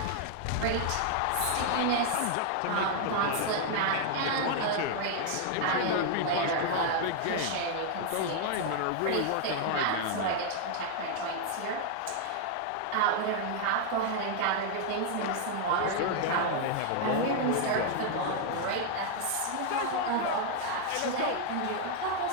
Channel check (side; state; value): both; different; correlation 0.00